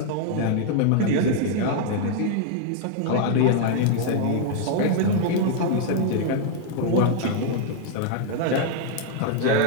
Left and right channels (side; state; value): both; different; correlation -0.01